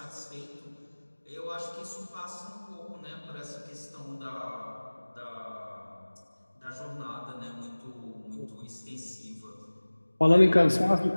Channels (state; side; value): inverted; both; correlation -1.00